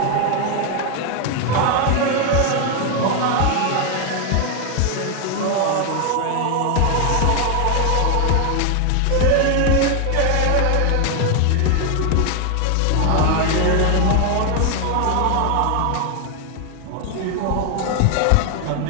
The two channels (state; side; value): different; both; correlation 0.01